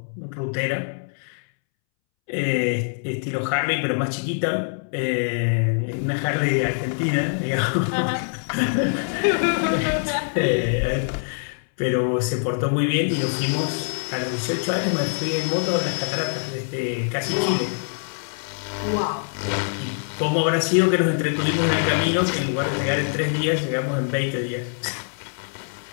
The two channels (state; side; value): silent; right; 63 dB below the other